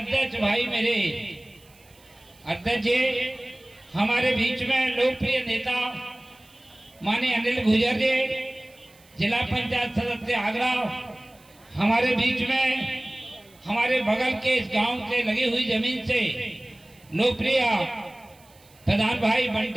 भाई मेरे अध्यक्ष जी, हमारे बीच में लोकप्रिय नेता माननीय अनिल गुर्जर जी, जिला पंचायत सदस्य आगरा, हमारे बीच में हमारे बगल के इस गांव से लगी हुई जमीन से लोकप्रिय प्रधान भाई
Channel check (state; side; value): noise; right; hiss, 28 dB below the sound